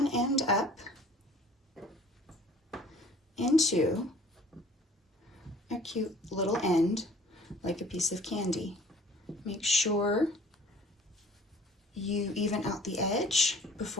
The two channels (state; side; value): normal; both; correlation 0.51